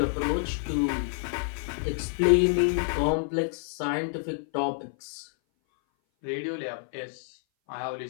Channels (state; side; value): silent; right; 57 dB below the other